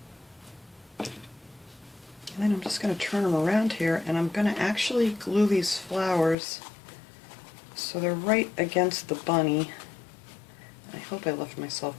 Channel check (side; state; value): right; drops out; at 6.4 s